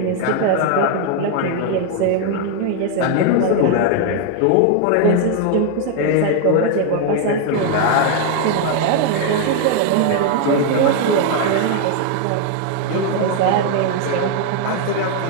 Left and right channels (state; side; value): different; both; correlation 0.00